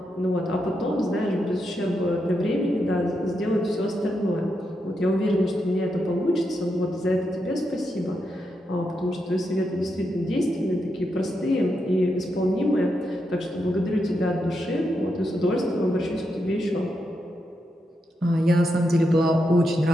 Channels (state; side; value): normal; both; correlation 0.84